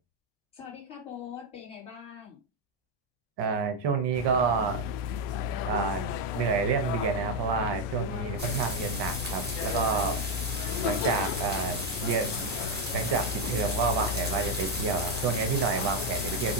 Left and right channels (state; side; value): normal; both; correlation 0.05